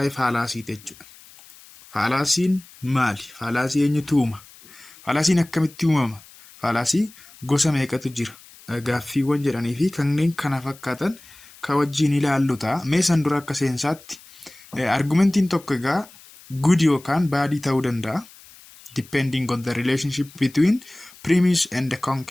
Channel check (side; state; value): left; noise; hiss, 22 dB below the sound